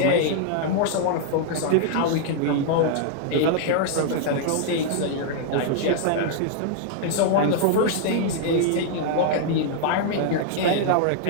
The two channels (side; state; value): both; different; correlation -0.01